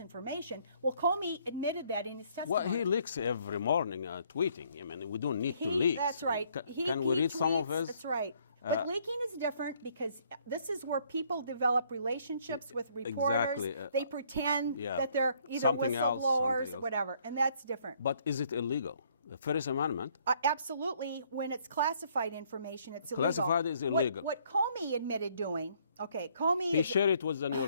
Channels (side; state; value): both; inverted; correlation -0.65